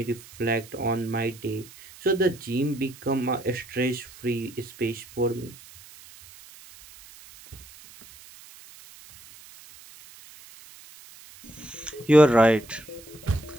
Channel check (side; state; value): right; noise; hiss, 20 dB below the sound